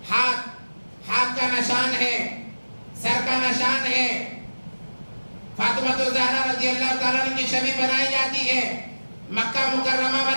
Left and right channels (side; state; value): both; inverted; correlation -1.00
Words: ہاتھ کا نشان ہے، سر کا نشان ہے، فاطمہ الزہرا رضی اللہ تعالیٰ عنہ کی شبیہ بنائی جاتی ہے، مکہ مکرمہ